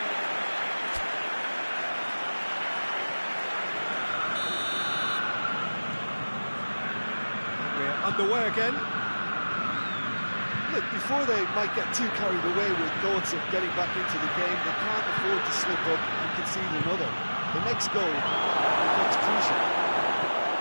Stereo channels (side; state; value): both; inverted; correlation -1.00